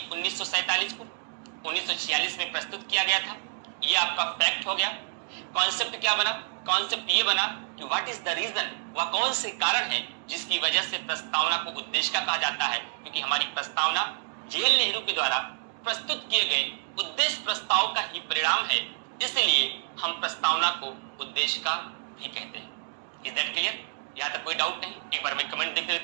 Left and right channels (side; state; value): left; silent; digital silence